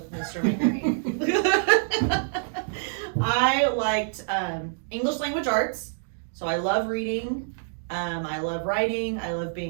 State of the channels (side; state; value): left; silent; digital silence